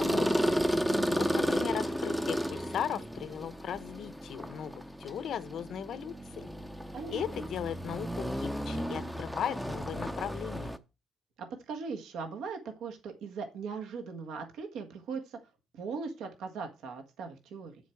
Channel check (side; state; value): both; normal; correlation 0.86